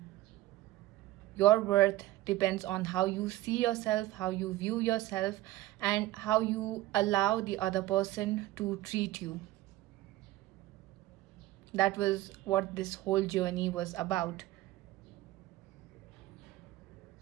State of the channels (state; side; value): quieter; left; 16.4 dB